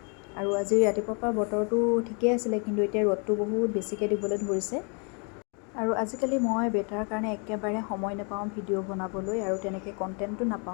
আৰু আজি ৰাতিপুৱাৰ পৰা বতৰটো ঠিকেই আছিলে, কিন্তু এতিয়া ৰ'দটো বহুত বেছিকৈ দিবলৈ ধৰিছে। আৰু আজিকালি মই বেটাৰ কাৰণে একেবাৰে সময় নাপাওঁ ভিডিঅ' বনাবলৈ, আৰু তেনেকৈ কণ্টেণ্টো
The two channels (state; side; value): quieter; right; 36.4 dB